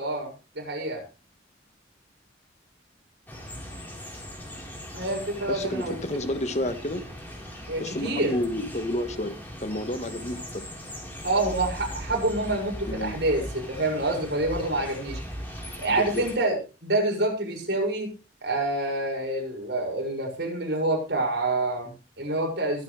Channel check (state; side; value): normal; both; correlation -0.05